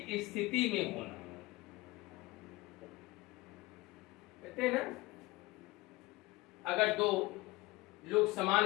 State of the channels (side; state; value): right; quieter; 20.8 dB